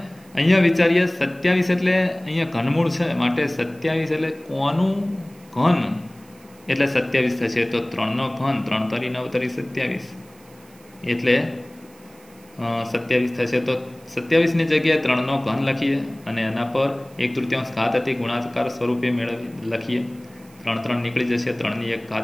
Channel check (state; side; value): noise; right; hiss, 27 dB below the sound